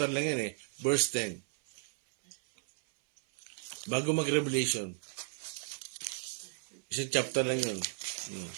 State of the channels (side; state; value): left; silent; 55 dB below the other